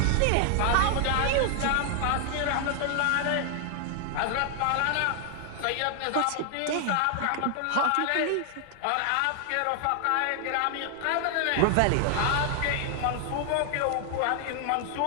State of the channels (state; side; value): different; both; correlation 0.00